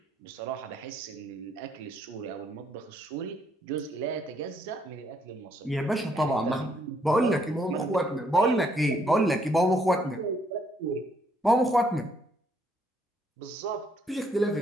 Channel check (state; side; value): normal; both; correlation 0.70